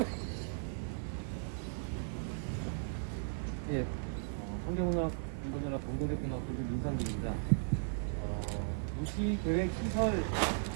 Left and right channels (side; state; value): left; silent; 53 dB below the other